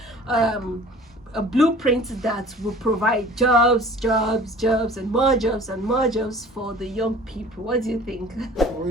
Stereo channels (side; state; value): both; normal; correlation 0.46